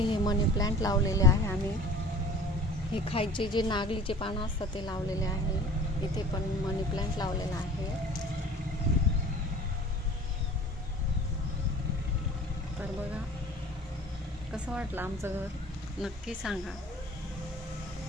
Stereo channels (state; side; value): normal; both; correlation 0.44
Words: मनी प्लांट लावलेले आहे आम्ही। हे खायचे जे नागलीचे पानं असतात ते लावलेले आहे। इथे पण मनी प्लांट लावलेला आहे। तर बघा, कसं वाटलं आमचं घर, नक्की सांगा।